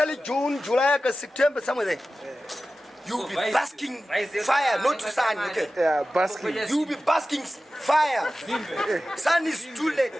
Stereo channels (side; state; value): both; normal; correlation 0.95